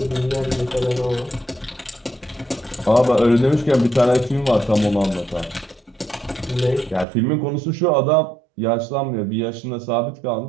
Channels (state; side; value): drops out; left; at 7.1 s